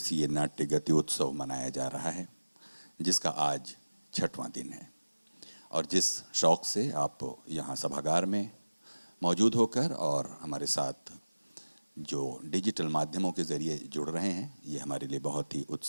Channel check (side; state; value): both; inverted; correlation -1.00